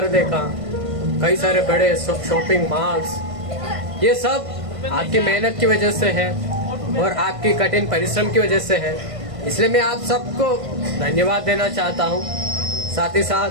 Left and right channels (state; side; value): late; left; 1.5 ms